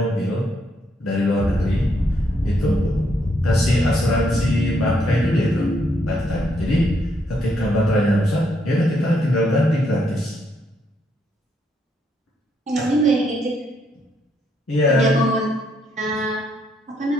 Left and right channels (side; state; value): both; normal; correlation 0.75